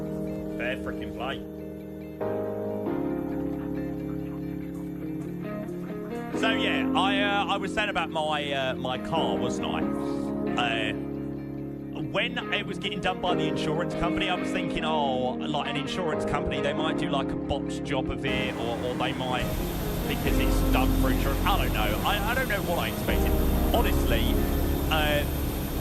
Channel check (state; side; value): identical; both; correlation 1.00